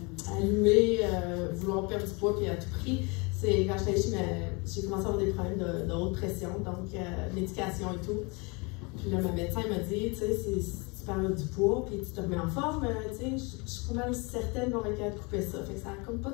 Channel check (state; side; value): quieter; right; 29.5 dB